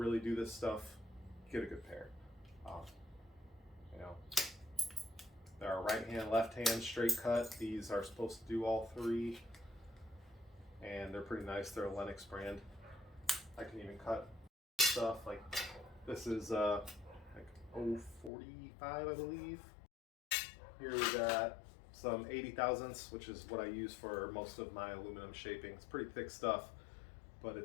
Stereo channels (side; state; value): right; drops out; at 18.3 s